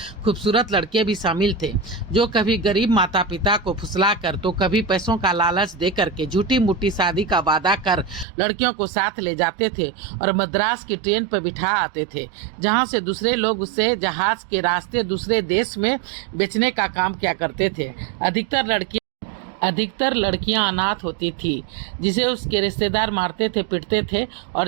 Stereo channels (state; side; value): drops out; left; at 8.2 s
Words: खूबसूरत लड़के भी शामिल थे, जो कभी गरीब माता पिता को फुसला कर तो कभी पैसों का लालच दे करके झूठी मूठी शादी का वादा कर लड़कियों को साथ ले जाते थे और मद्रास की ट्रेन पर बिठा आते थे, जहाँ से दूसरे लोग उससे जहाज के रास्ते दूसरे देश में बेचने का काम किया करते थे। अधिकतर लड़कियां अनाथ होती थी, जिसे उसके रिश्तेदार मारते थे, पीटते थे